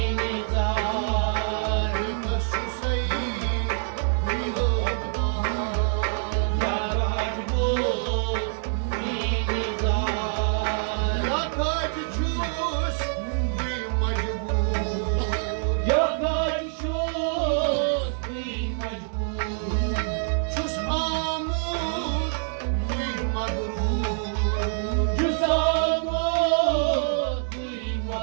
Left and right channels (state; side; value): silent; left; 61 dB below the other